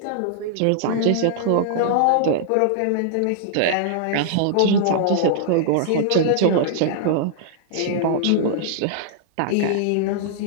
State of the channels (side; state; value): both; different; correlation -0.01